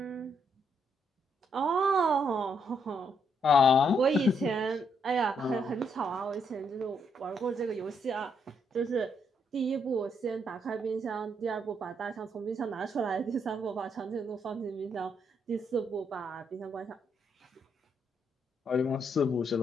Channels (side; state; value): both; normal; correlation 0.75